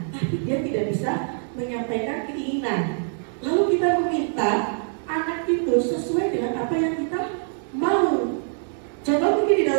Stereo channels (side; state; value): left; silent; digital silence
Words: tapi dia tidak bisa menyampaikan keinginan. Lalu kita meminta anak itu sesuai dengan apa yang kita mau. Contoh mungkin di